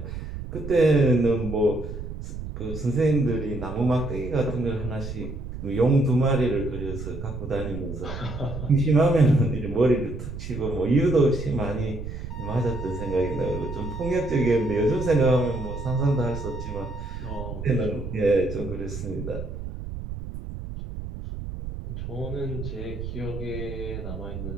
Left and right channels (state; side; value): noise; right; rumble, 8 dB below the sound